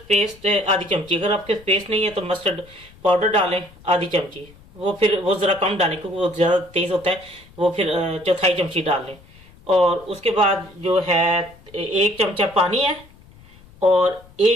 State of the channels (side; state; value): left; noise; rumble, 24 dB below the sound